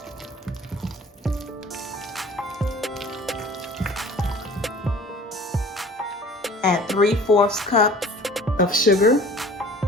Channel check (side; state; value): both; normal; correlation 0.46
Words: Add 3/4 cup of sugar.